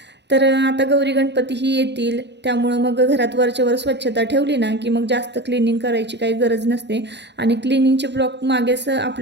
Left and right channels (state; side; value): late; left; 0.50 ms